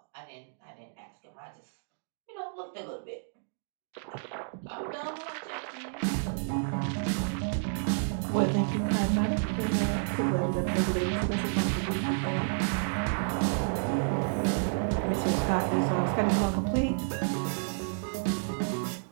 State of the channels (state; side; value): silent; left; digital silence